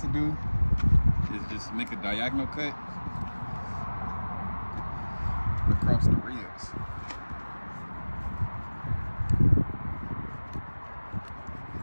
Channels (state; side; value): inverted; both; correlation -1.00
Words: to do is just make a diagonal cut across the ribs.